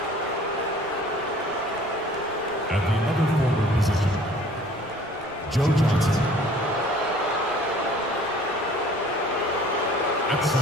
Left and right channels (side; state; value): right; noise; rumble, 24 dB below the sound